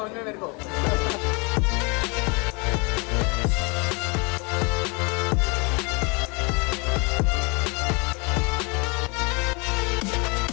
में मेरे को.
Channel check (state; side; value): quieter; right; 30.6 dB